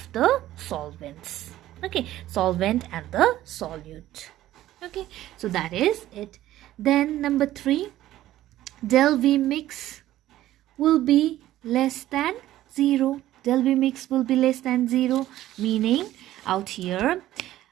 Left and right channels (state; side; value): quieter; left; 14.2 dB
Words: the solvents. Okay, solvent and the solute. Okay, so that is it. Then number 3, del V mix will be less than 0. Del V mix will be less than 0, meaning out here,